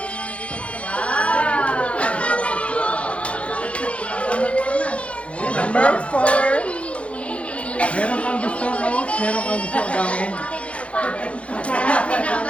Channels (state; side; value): late; right; 0.062 ms